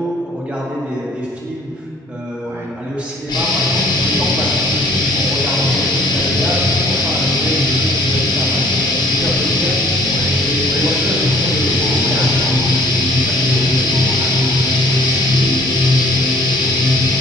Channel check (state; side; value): normal; both; correlation 0.56